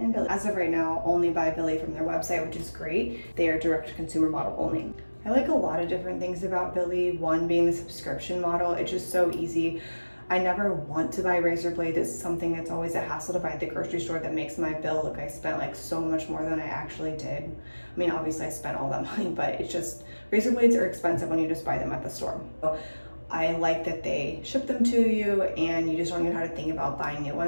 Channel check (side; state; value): both; inverted; correlation -1.00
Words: Billie. As of right now, only buy Billie from their website, which is great. They are direct-to-consumer model only. I like a lot of different things about Billie. One being the subscription model. It's just so easy. I never want to buy razor blade. It's something that's always a hassle to buy at the grocery store that makes my bill look I spent like so much more than I actually did. I mean, obviously I spent all that money, but it's just, razor blades are expensive when you just buy them at the store. So I like that they ship them to you and you just don't even have to think about buying new